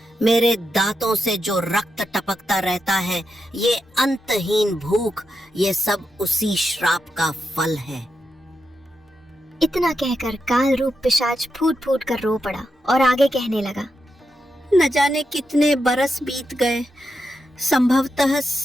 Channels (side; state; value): both; normal; correlation 0.86